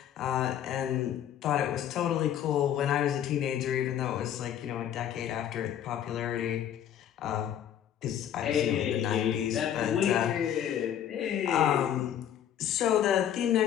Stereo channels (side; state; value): right; quieter; 10.1 dB